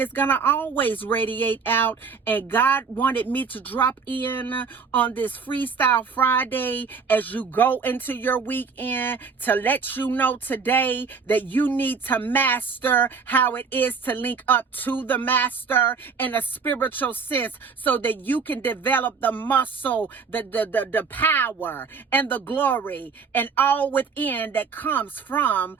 it's going to always radiate out. And God wanted me to drop in on this Freestyle Friday as you go into your weekend to let you know today that you need to master how it is to link up to the master in a spiritual sense, so that you can develop the muscle, the power and the glory and all within that comes from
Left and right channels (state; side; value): quieter; left; 5.4 dB